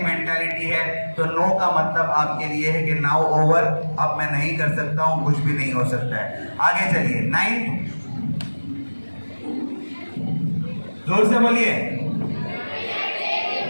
मेंटालिटी है तो नो का मतलब आपके लिए है कि नाउ ओवर, अब मैं नहीं कर सकता हूँ, कुछ भी नहीं हो सकता है। आगे चलिए। 9, जोर से बोलिए।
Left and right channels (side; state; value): both; inverted; correlation -1.00